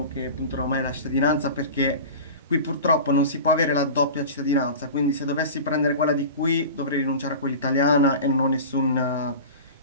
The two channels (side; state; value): both; inverted; correlation -0.33